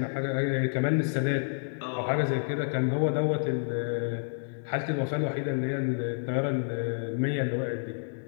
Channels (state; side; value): silent; right; digital silence